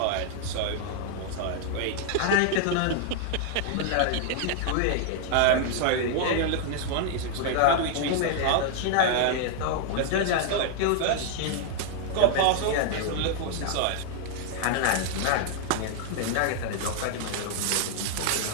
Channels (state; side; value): different; both; correlation -0.01